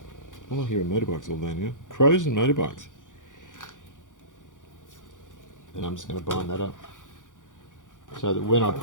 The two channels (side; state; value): right; late; 0.87 ms